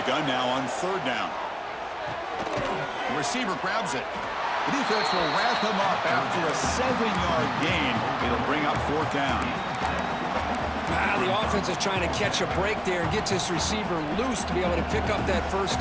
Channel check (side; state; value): both; identical; correlation 1.00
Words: gun now on 3rd down. The receiver grabs it. The defense will wrap him up after a 7-yard gain. It'll bring up 4th down. The offense is trying to catch a break there and get this receiver loose to be able to pick up that 1st